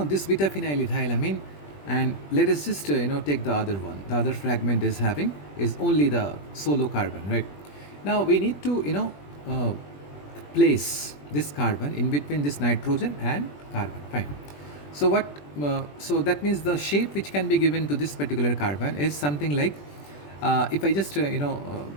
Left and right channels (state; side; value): late; right; 21 ms